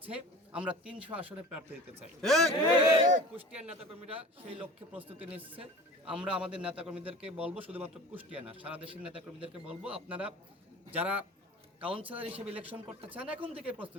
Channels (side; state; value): both; normal; correlation 0.40